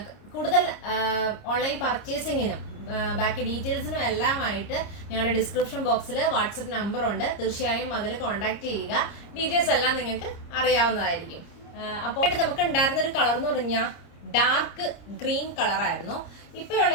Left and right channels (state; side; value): late; right; 30 ms